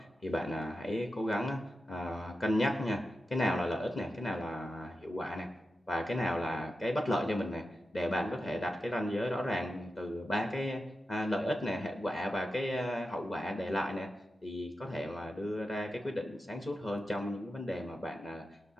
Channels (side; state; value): both; normal; correlation 0.91